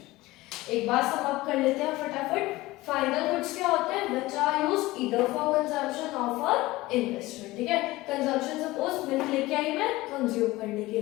एक बार सम अप कर लेते हैं फटाफट। फाइनल गुड्स क्या होते हैं, which are used either for consumption और फॉर इन्वेस्टमेंट। ठीक है, कंजम्पशन सपोज मिल्क लेके आई मैं कंज्यूम करने के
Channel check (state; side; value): quieter; right; 19.0 dB